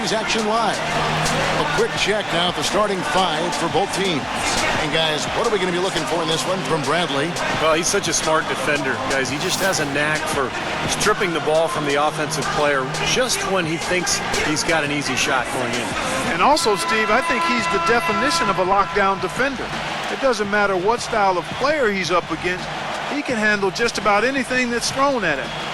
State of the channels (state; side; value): identical; both; correlation 1.00